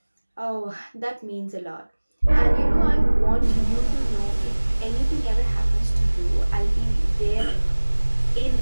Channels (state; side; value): inverted; both; correlation -1.00